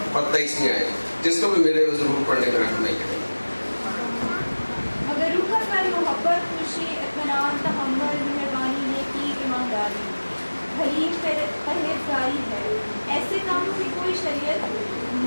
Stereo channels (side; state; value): both; inverted; correlation -1.00